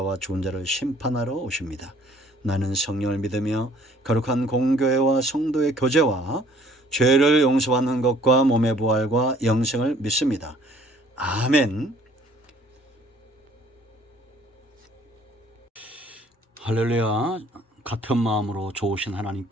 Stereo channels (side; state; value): both; normal; correlation 0.57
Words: 죽은 자를 심판하러 오십니다. 나는 성령을 믿으며 거룩한 공교회와 성도의 교제와 죄를 용서받는 것과 몸의 부활과 영생을 믿습니다. 아멘. 할렐루야. 같은 마음으로 좋으신